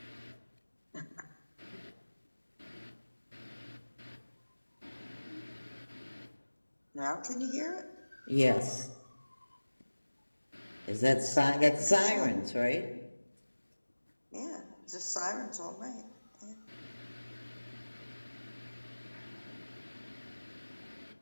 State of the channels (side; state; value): both; inverted; correlation -1.00